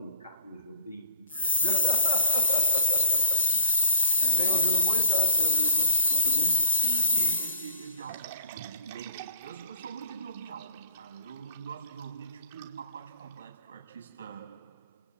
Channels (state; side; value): inverted; both; correlation -0.54